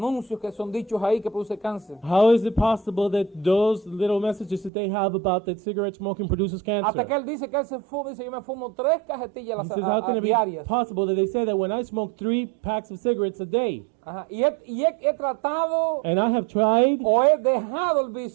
que son dichos ahí que produce cáncer? How is it possible that those little messages that they have about that cigarette smoking produces Hasta que cancer? él dice que él se fuma, dice yo me fumo 3 cajetillas He says, how can it be diarias. possible that they say that when I smoke 3 packs of cigarettes a day, Ajá. Y he tratado and I have tried, o he dejado el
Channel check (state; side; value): drops out; left; at 4.7 s